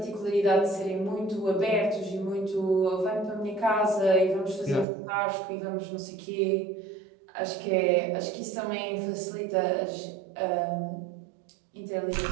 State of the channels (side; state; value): left; drops out; at 4.9 s